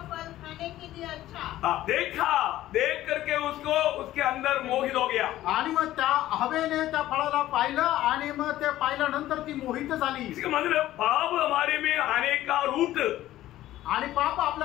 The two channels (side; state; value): right; quieter; 14.5 dB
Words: फल खाने के लिए अच्छा, देख करके उसके अंदर मोहित हो गया। आणि मग त्या हवेने त्या फळाला पाहिलं आणि मग ते पाहिल्यानंतर ती मोहित झाली। इसका मतलब पाप हमारे में आने का रूट, आणि पाप